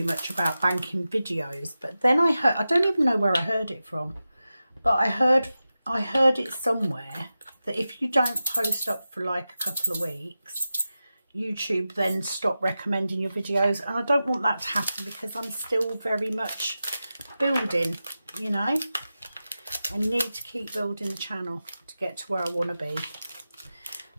much about banking videos, but then I heard, I don't even know where I heard it from, but I heard it somewhere that if you don't post up for like a couple of weeks, YouTube then stop recommending your videos, and I don't want that to happen because I'm still very much building, you know. I need to keep building the channel to get to where I want to be.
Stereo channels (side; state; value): both; inverted; correlation -0.93